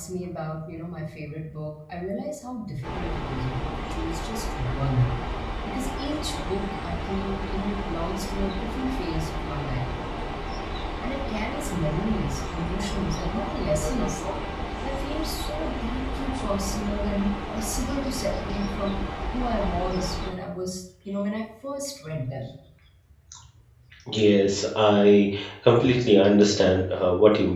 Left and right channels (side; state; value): both; identical; correlation 1.00